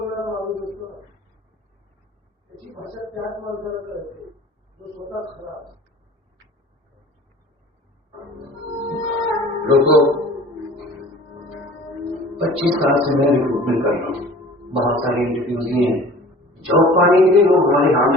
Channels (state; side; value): normal; both; correlation 0.45